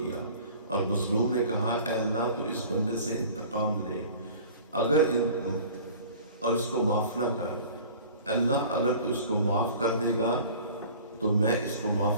اور مظلوم نے کہا اے اللہ تو اس بندے سے انتقام لے اور اس کو معاف نہ کر، اللہ اگر تو اس کو معاف کر دے گا تو میں اس کو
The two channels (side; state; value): both; inverted; correlation -0.45